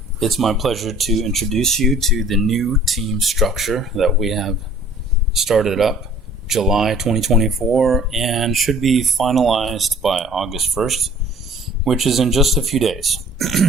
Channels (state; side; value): normal; both; correlation 0.52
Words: It's my pleasure to introduce you to the new team structure that we have started up July 2024 and should be finalized by August 1st, which is in just a few days.